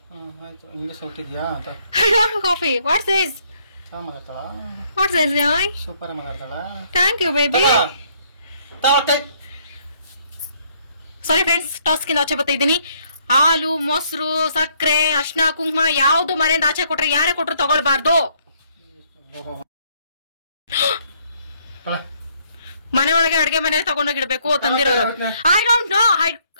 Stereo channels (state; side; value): inverted; both; correlation -0.68